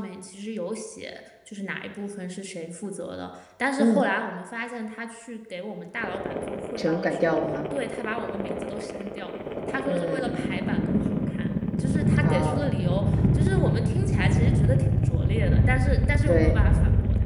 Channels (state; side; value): identical; both; correlation 1.00